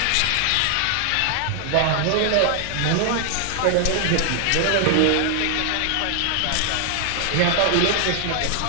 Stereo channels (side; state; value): both; different; correlation 0.00